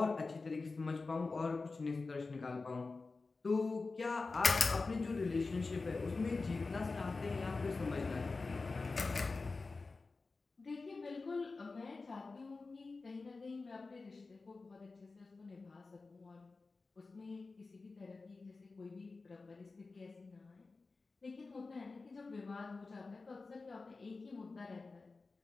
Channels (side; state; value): right; quieter; 3.9 dB